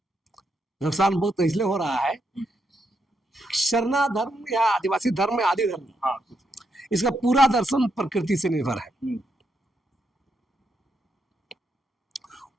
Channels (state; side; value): normal; both; correlation 0.80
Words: नुकसान बहुत इसलिए हो रहा है, सरना धर्म या आदिवासी धर्म में आदि धर्म, इसका पूरा दर्शन प्रकृति से निर्भर है।